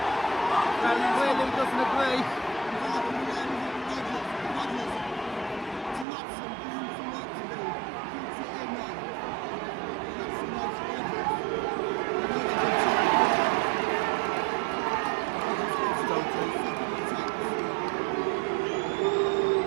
Clearly doesn't agree.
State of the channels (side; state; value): left; drops out; at 6.1 s